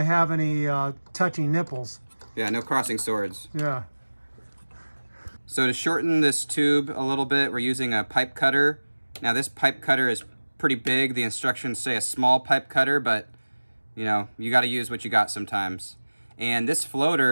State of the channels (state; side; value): inverted; both; correlation -1.00